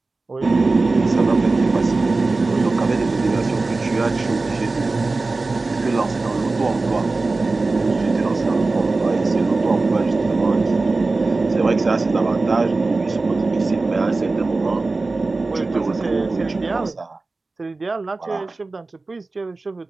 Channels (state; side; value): quieter; left; 3.5 dB